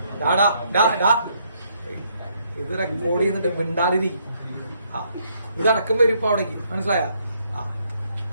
ഇത് റെക്കോർഡ് ചെയ്യുന്നുണ്ട്, മിണ്ടാതിരി. ഇതടക്കം വരും ഇപ്പൊ അവിടേക്ക്, മനസ്സിലായ?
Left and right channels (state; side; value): inverted; both; correlation -0.71